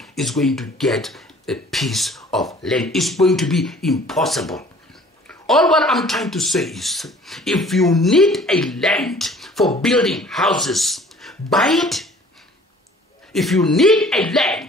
is going to get a piece of land. It's going to be impossible. All what I'm trying to say is, if you need a land for building houses, buy it. If you need a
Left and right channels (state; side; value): normal; both; correlation 0.51